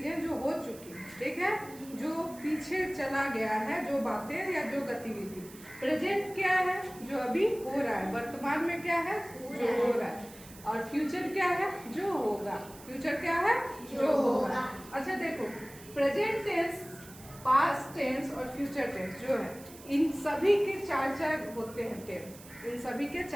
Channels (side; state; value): right; noise; hiss, 19 dB below the sound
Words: जो हो चुकी है, ठीक है, जो पीछे चला गया है, जो बातें या जो गतिविधि। प्रेजेंट क्या है? जो अभी हो रहा है, वर्तमान में क्या है? जो हो रहा है। और फ्यूचर क्या है? जो होगा। फ्यूचर क्या है? जो होगा। अच्छा देखो, प्रेजेंट टेंस, पास्ट टेंस और फ्यूचर टेंस जो है, इन सभी के 4 होते हैं टेंस। इन सभी के